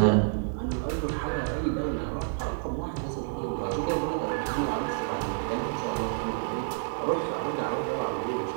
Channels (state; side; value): silent; left; digital silence